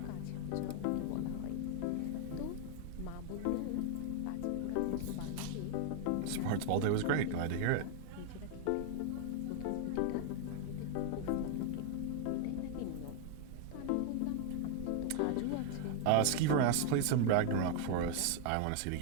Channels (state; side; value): different; both; correlation 0.00